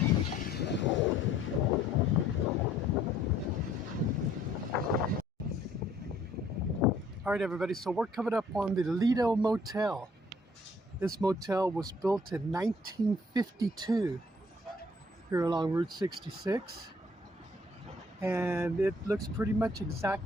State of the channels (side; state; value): both; normal; correlation 0.61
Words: Alright everybody, so we're coming up on the Lido Motel. This motel was built in 1952 here along Route 66. And it looks pretty much